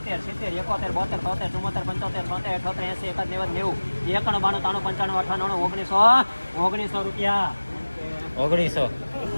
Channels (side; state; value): both; inverted; correlation -1.00